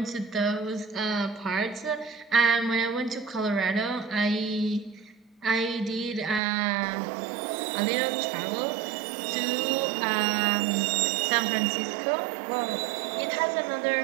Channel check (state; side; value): drops out; left; at 6.4 s